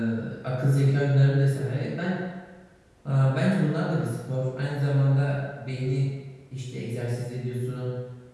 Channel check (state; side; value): identical; both; correlation 1.00